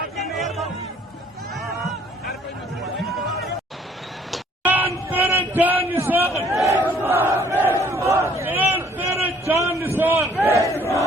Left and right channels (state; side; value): normal; both; correlation 0.59